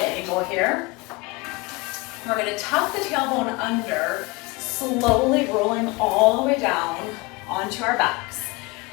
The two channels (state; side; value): quieter; right; 24.8 dB